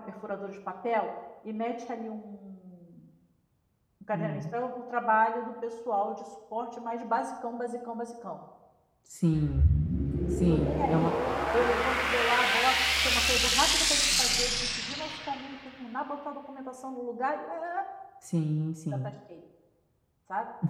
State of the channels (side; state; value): both; identical; correlation 1.00